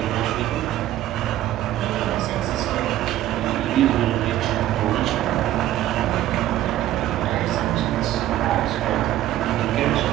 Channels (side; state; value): left; quieter; 13.6 dB